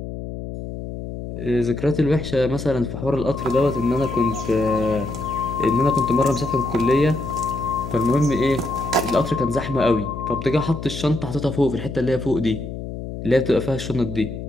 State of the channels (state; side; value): noise; left; hum, 8 dB below the sound